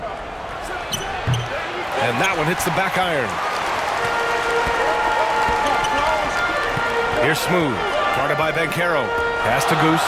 And that one hits the back iron. Here's Smooth. Guarded by Banchero. Pass to Goose.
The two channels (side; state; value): both; identical; correlation 1.00